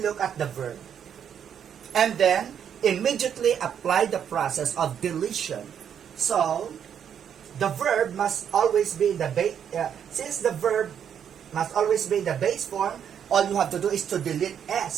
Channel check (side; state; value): left; quieter; 8.5 dB